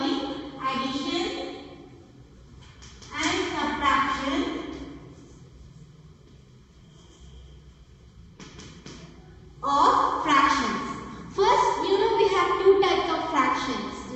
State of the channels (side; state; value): both; identical; correlation 1.00